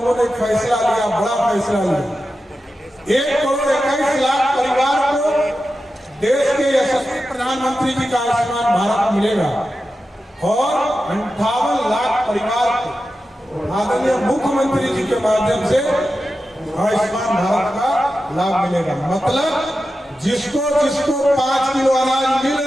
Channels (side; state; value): both; normal; correlation 0.91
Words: ने एक फैसला लिया, बड़ा फैसला लिया। 1,21,00,000 परिवार को देश के यशस्वी प्रधानमंत्री जी का आयुष्मान भारत मिलेगा और 58 लाख परिवार को आदरणीय मुख्यमंत्री जी के माध्यम से आयुष्मान भारत का लाभ मिलेगा। मतलब जिसको 5 किलो अनाज मिल